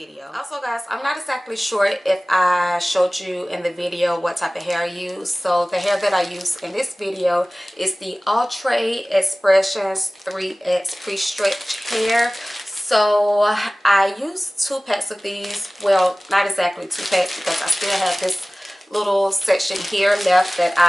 Also guys, I'm not exactly sure if I showed you in the video what type of hair I use. So the hair that I use in this video is the outre x-pressions 3x pre-stretch hair. So I used 2 packs of these. Well, not exactly 2 packs because I still have this little section here left that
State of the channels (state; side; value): normal; both; correlation 0.98